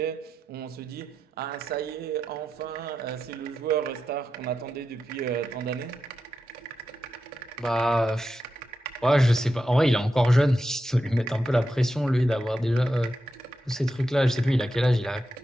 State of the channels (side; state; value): both; normal; correlation 0.88